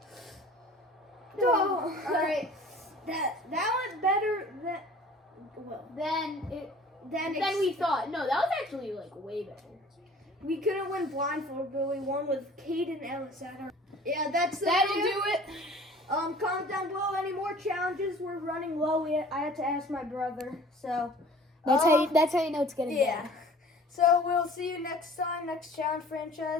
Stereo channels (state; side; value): normal; both; correlation 0.48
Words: Oh, all right. That went better than we thought. No, that was actually way better. we couldn't win blindfold, but we won with Caden Ellis at our. Yeah, that'll do it. Comment down below any more challenges. We're running low. I had to ask my brother, so That's how you know it's getting yeah. So we'll see you next time, next challenge